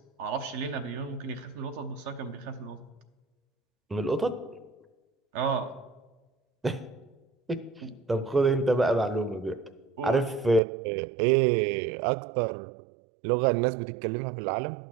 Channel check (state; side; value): drops out; left; at 10.6 s